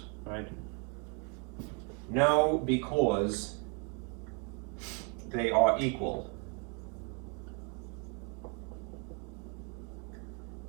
right? No, because they are equal.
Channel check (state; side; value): quieter; left; 36.4 dB